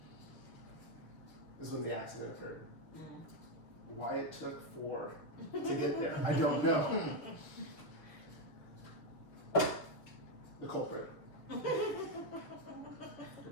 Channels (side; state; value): right; late; 6.8 ms